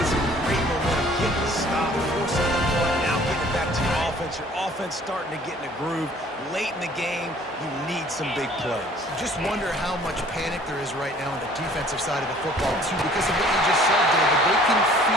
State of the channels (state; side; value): normal; both; correlation 0.54